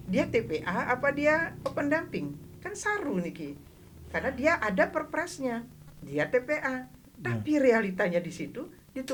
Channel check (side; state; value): both; identical; correlation 1.00